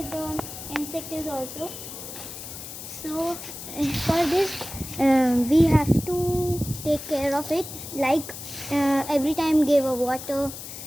the insect is also. So for this, we have to take care of it. Like every time, give a water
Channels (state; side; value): noise; left; hiss, 11 dB below the sound